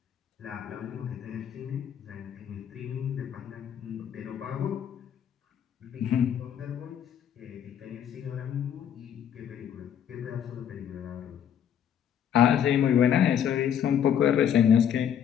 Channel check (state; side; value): quieter; right; 9.1 dB